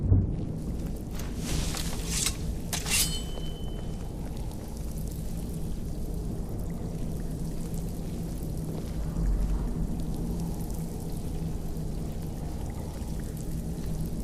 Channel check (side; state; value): both; identical; correlation 1.00